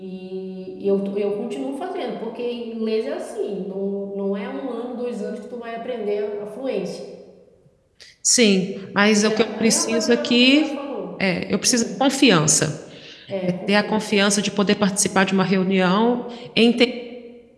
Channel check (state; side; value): identical; both; correlation 1.00